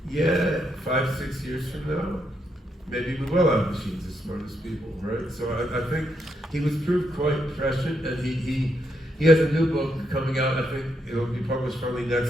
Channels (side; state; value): both; normal; correlation 0.79